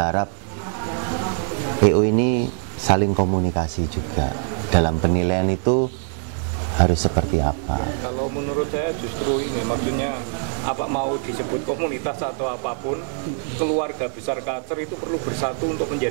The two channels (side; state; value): left; silent; digital silence